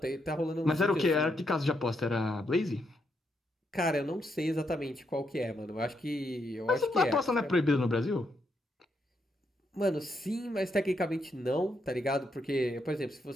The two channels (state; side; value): normal; both; correlation 0.79